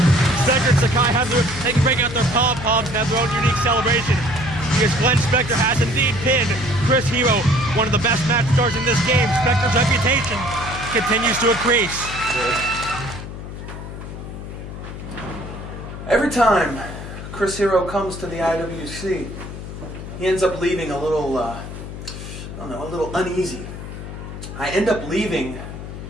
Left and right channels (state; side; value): noise; left; hum, 10 dB below the sound